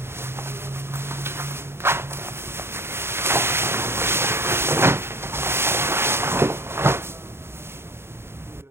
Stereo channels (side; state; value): left; late; 0.12 ms